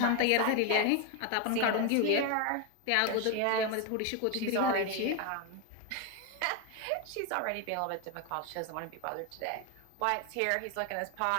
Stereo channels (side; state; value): both; different; correlation 0.01